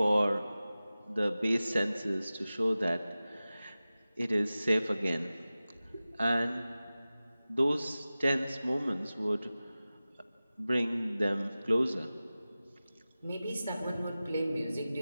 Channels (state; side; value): inverted; both; correlation -0.96